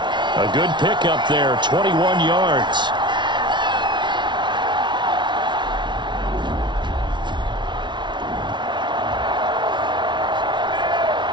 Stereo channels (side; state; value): left; late; 0.23 ms